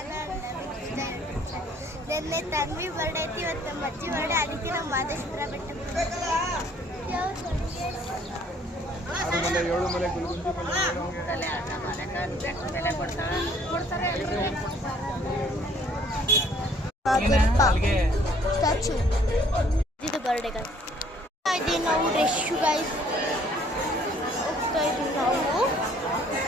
ನಿನ್ನೆ Tanvi birthday ಐತಿ, ಇವತ್ತು ನಮ್ಮ ಅಜ್ಜಿ ಬರ್ಡೇ. ಅದಕ್ಕೆ ನಾವು ಮಾದೇಶ್ವರ ಬೆಟ್ಟಕ್ಕೆ ಸ್ಟ್ಯಾಚು ಇದು ಬರ್ಡೇ ಗೈಸ್. ಇದೀವಿ ನಾವು ರೆಶ್ ಗೈಸ್, ಹೋಗ್ತಾ ಇದೀವಿ ನಾವು.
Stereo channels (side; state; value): both; normal; correlation 0.60